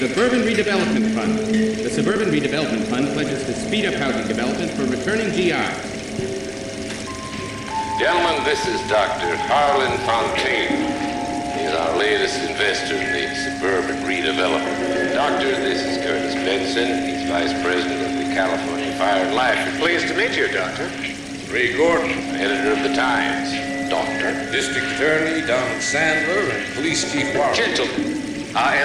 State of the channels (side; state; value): both; identical; correlation 1.00